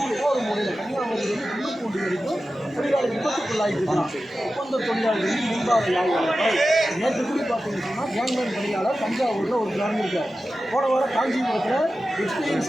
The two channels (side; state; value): both; normal; correlation 0.93